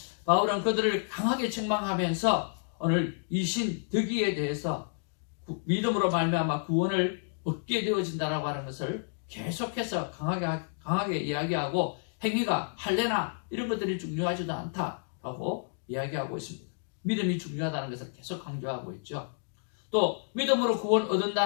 바울은 그들을 강하게 책망하면서 오늘 이 신 덕이에 대해서 믿음으로 말미암아 구원을 얻게 되어진다라고 하는 것을 계속해서 강하게 이야기하고, 행위가 할례나 이런 것들이 중요하지도 않다라고 이야기하고 있습니다. 믿음이 중요하다는 것을 계속 강조하고 있죠. 또 믿음으로 구원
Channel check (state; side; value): silent; right; digital silence